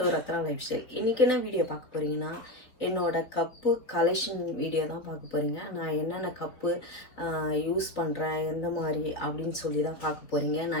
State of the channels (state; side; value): late; right; 4.1 ms